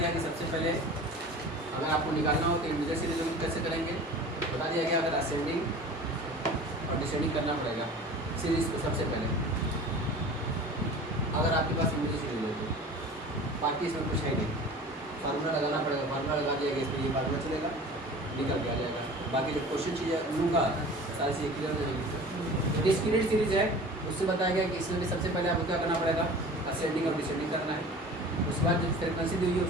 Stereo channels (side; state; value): both; normal; correlation 0.40